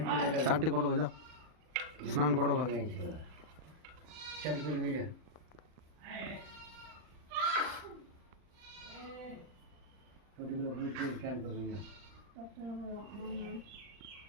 কি লাগা চানটি করো গো, যাও স্নান করো গো। চান করবি যা ছোটগুলো বুঝতে চান করবি যা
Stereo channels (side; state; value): left; late; 39 ms